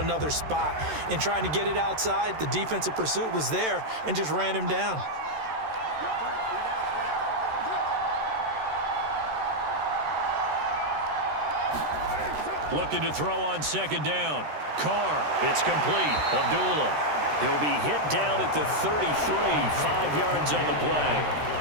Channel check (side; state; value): left; late; 13 ms